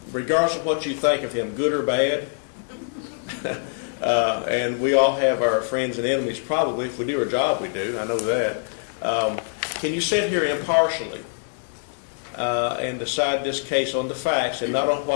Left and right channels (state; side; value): silent; right; digital silence